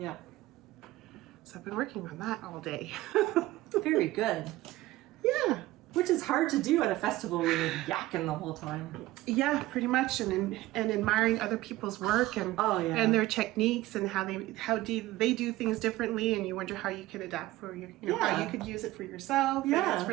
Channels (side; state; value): left; quieter; 17.3 dB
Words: So I've been working on that all day. Very good. Yeah. Which is hard to do at a festival when you're yakking the whole time. Yeah, pretty much, and admiring other people's work and and their techniques and how they do things differently, and you wonder how you can adapt for your, how you could use it for yourself. Yeah, it's